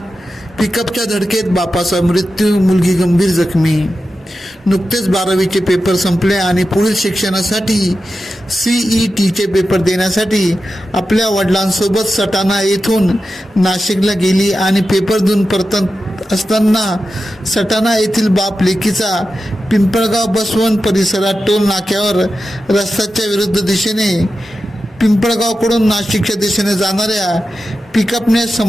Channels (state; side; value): normal; both; correlation 0.92